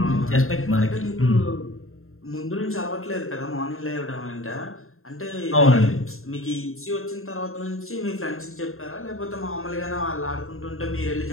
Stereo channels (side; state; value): right; late; 0.62 ms